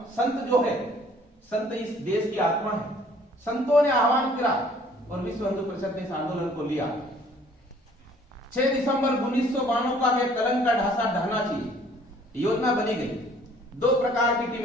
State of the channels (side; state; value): both; normal; correlation 0.57